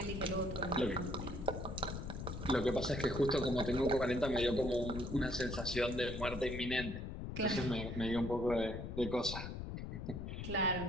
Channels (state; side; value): noise; left; rumble, 6 dB below the sound